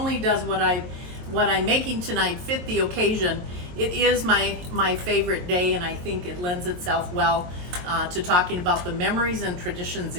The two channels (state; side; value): late; left; 22 ms